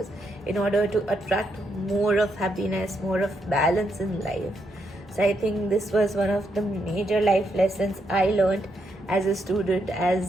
in order to attract more of happiness, more of balance in life. So I think this was one of the major life lessons I learned as a student,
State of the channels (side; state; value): both; normal; correlation 0.79